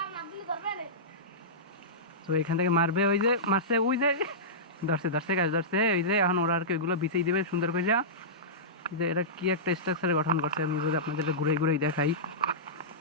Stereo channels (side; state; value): both; normal; correlation -0.17